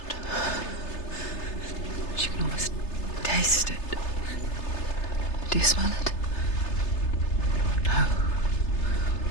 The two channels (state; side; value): late; right; 3.3 ms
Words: She can almost taste it. Do you smell it? No.